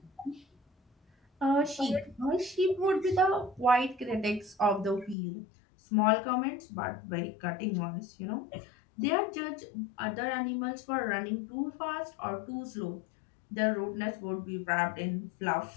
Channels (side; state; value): right; drops out; at 5.2 s